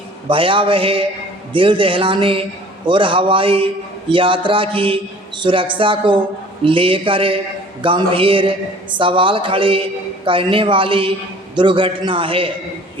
भयावह, दिल दहलाने और हवाई यात्रा की सुरक्षा को लेकर गंभीर सवाल खड़े करने वाली दुर्घटना है।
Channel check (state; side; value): normal; both; correlation 0.49